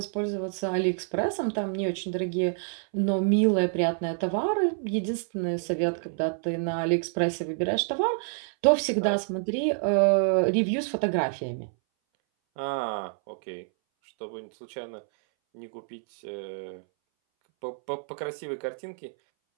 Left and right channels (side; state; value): left; silent; 60 dB below the other